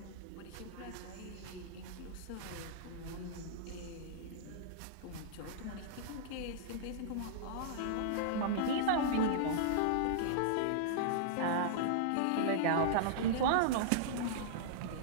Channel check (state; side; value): different; both; correlation -0.02